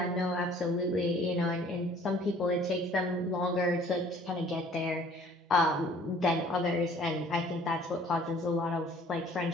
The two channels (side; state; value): both; normal; correlation 0.54